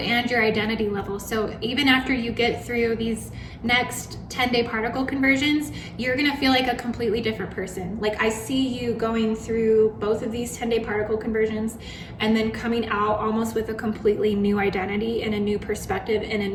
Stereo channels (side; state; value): both; identical; correlation 1.00